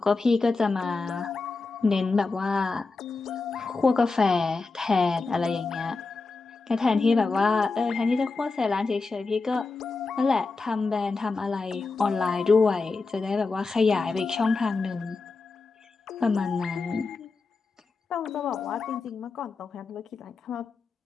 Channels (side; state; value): right; quieter; 4.0 dB